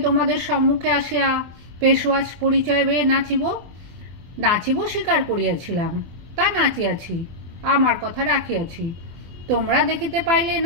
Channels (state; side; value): late; left; 24 ms